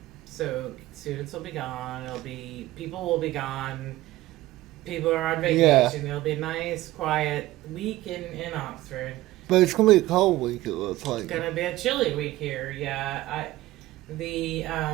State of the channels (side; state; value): left; quieter; 16.9 dB